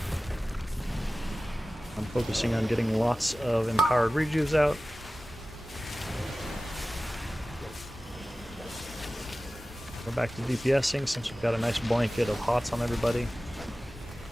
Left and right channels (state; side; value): normal; both; correlation 0.96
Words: I'm focusing on getting lots of empowered rejuves out. Go back to DPSing since we've got a nice blanket of hots on everybody.